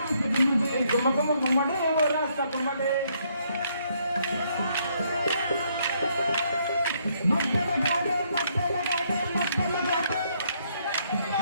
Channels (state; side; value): inverted; both; correlation -0.71